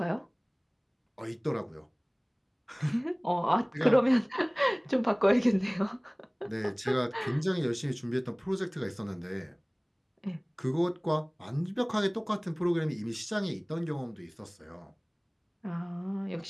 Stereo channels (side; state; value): both; identical; correlation 1.00